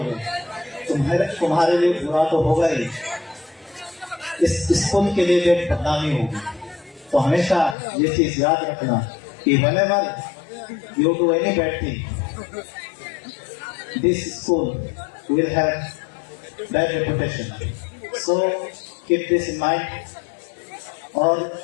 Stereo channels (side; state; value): right; drops out; at 7.8 s